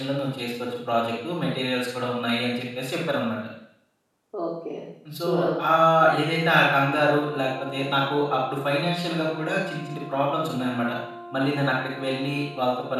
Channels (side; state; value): both; identical; correlation 1.00